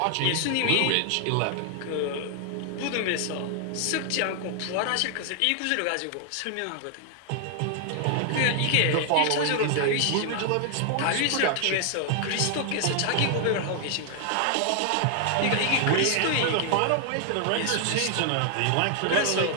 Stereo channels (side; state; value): both; different; correlation 0.00